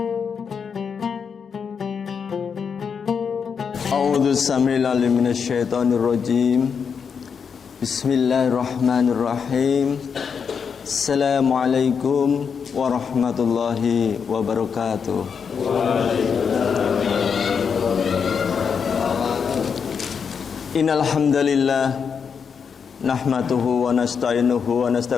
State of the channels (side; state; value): right; quieter; 6.4 dB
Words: A'udzu samii'al minasyaitonir rajim. Bismillahirrahmanirrahim. Assalamualaikum warahmatullahi wabarakatuh. Innal hamdalillah nahmaduhu wa nasta'inuhu wa